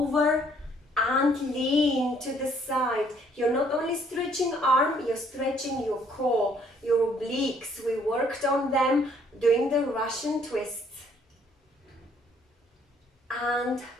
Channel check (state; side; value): normal; both; correlation 0.63